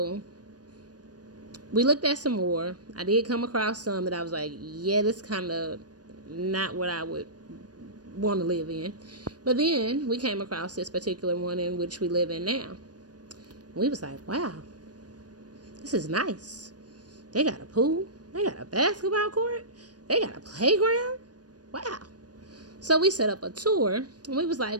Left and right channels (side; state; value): left; late; 0.69 ms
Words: we looked at some more. I did come across some that I was like, yeah, this kind of not what I would want to live in. But then we came across this particular one in which we live in now. We was like, wow, this is nice. They got a pool. They got a basketball court. They got a playground. Wow. So we set up a tour and we was